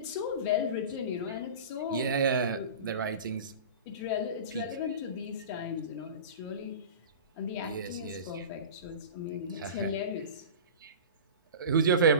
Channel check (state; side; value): inverted; both; correlation -0.32